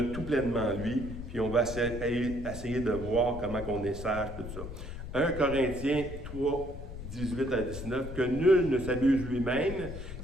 tout pleinement en lui, puis on va essayer de voir comment on est sage, tout ça. 1 Corinthiens 3, 18 à 19, que nul ne s'abuse lui-même.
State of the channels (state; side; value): noise; left; rumble, 9 dB below the sound